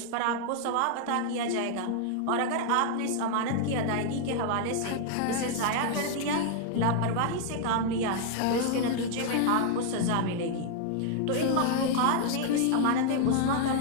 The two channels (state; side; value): different; both; correlation 0.00